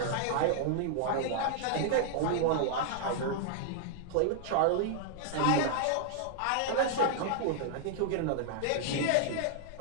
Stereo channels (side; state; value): both; different; correlation -0.01